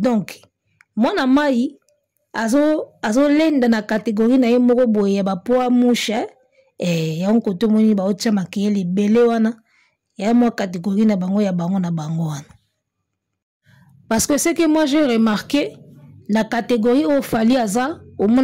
mwana mai azo lenda na catégorie na ye moko boye ya ba poids mouche ya nkoto moni ba otcha makele belé wana ya mo catégorie na bango ya bango na bango wana parce que c'est que moi j'ai remarqué la catégorie au Fally aza au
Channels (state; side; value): identical; both; correlation 1.00